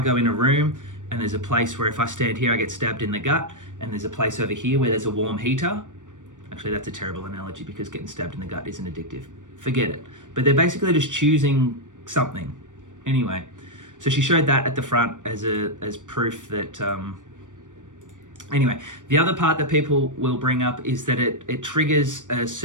in a room and there's a place where if I stand here I get stabbed in the gut, and there's a place over here where there's a warm heater. Actually, that's a terrible analogy because getting stabbed in the gut isn't addictive. Forget it. But they're basically just choosing something. Anyway, so she showed that at the front as proof that... Anyway, the other part that people will bring up is that it triggers a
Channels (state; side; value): late; left; 0.87 ms